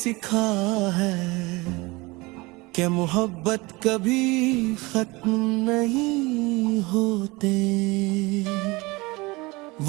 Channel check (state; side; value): quieter; left; 23.6 dB